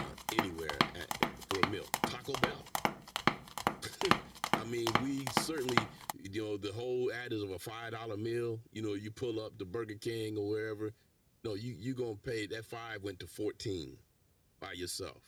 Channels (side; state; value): both; identical; correlation 1.00